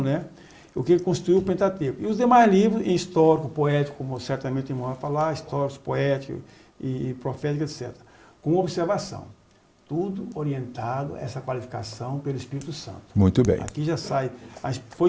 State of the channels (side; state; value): both; identical; correlation 1.00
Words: né? O que constituiu o Pentateuco. E os demais livros, em histórico, poético, como certamente o irmão vai falar, históricos, poéticos e proféticos, etc. Com observação. Tudo orientado a essa qualificação pelo Espírito Santo. Muito bem. Aqui já sai,